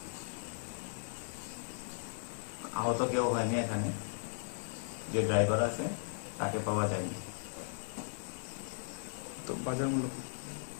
আহত কেউ হয়নি এখানে, যে ড্রাইভার আছে তাকে পাওয়া যায়নি। তো বাজার মূল্য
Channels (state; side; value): silent; right; digital silence